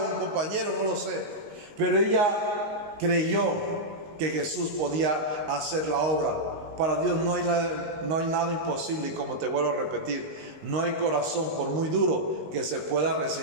o un compañero, no lo sé, pero ella creyó que Jesús podía hacer la obra. Para Dios no hay nada imposible, y como te vuelvo a repetir, no hay corazón, por muy duro, que se pueda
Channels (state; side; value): late; left; 19 ms